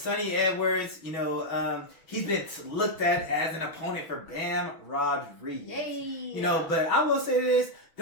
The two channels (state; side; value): late; right; 6.1 ms